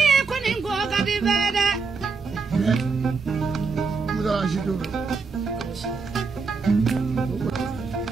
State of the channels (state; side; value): quieter; left; 4.7 dB